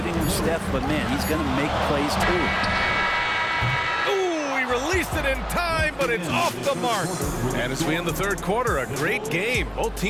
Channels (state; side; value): identical; both; correlation 1.00